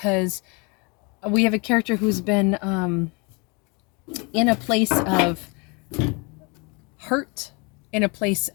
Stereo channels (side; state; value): right; quieter; 30.4 dB